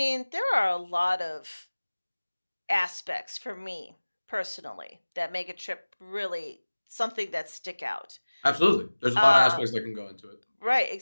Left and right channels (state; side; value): inverted; both; correlation -1.00